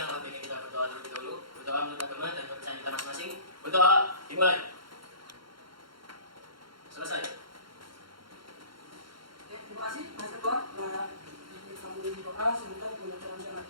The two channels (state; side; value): late; left; 0.73 ms